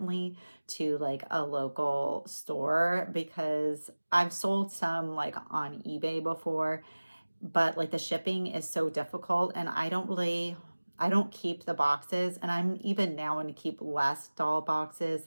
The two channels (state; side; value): inverted; both; correlation -1.00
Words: to like a local store because I've sold some like on eBay before, but like the shipping is so difficult, and I don't keep the boxes, and I'm even now going to keep less doll